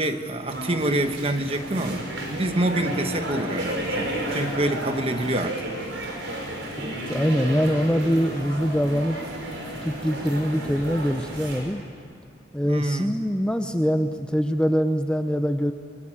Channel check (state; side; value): normal; both; correlation 0.77